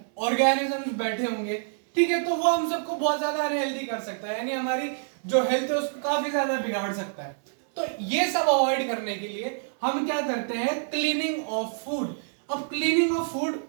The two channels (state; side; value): silent; left; 60 dB below the other